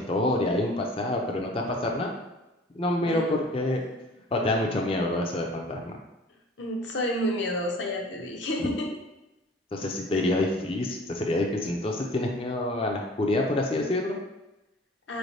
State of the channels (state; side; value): normal; both; correlation 0.47